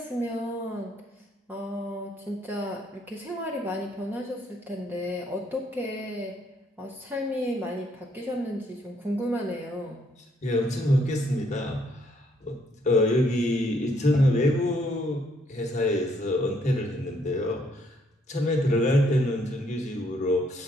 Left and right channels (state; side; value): normal; both; correlation 0.69